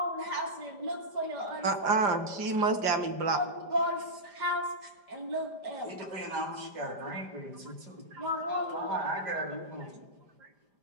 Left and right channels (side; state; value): left; late; 5.0 ms